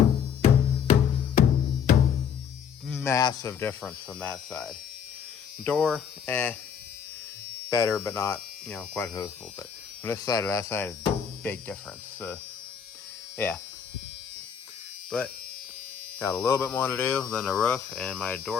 Massive difference from that side. Door, better, but not, quite as noticeable. But from this side to that side is big difference. Yeah. But got a little bit more to do than the roof and my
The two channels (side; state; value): right; quieter; 7.6 dB